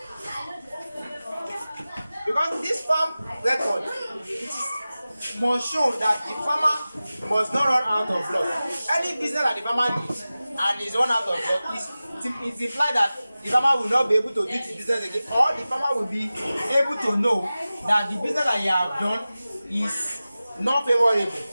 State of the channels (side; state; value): both; inverted; correlation -0.96